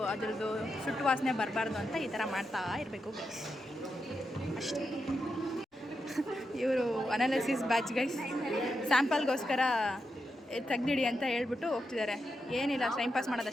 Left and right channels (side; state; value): both; normal; correlation 0.86